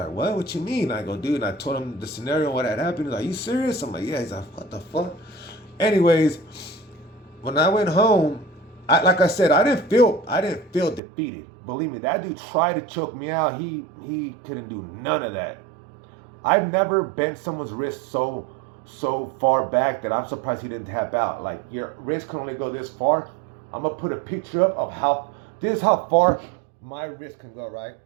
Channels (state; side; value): drops out; left; at 11.0 s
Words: what you mean? I go, dude. And I told him the scenario, what had happened. He's like, you serious? I'm like, yeah. He's like, what the fuck? Anyways, when I went home, like I said, I didn't feel defeated. Believe me, that dude tried to choke me out. He couldn't do none of that. I've never bent someone's wrist so far back that I'm surprised he didn't tap out. Like your wrist can only go this far. I'm gonna put a picture up of how this is how far my wrist can go, right?